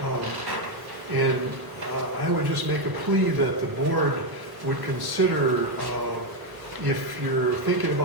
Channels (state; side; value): late; left; 1.1 ms